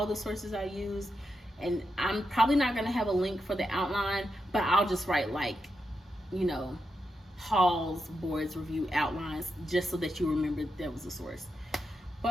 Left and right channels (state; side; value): normal; both; correlation 0.86